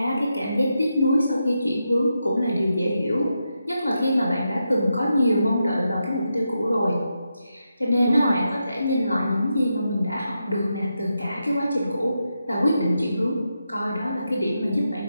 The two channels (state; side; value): inverted; both; correlation -0.86